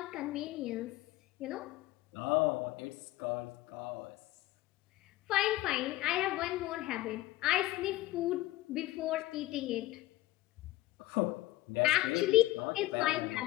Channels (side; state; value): right; quieter; 16.9 dB